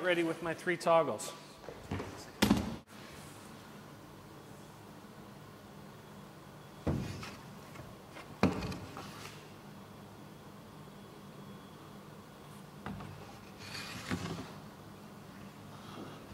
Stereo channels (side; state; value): both; identical; correlation 1.00